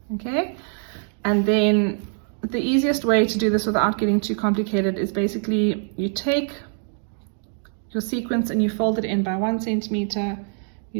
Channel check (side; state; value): left; silent; 59 dB below the other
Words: Okay, and then the easiest way to do this without getting too complicated is basically you take your sequence and you fold it in by 1 centimeter.